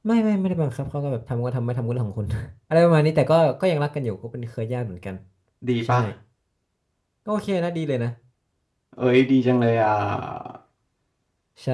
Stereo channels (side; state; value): both; identical; correlation 1.00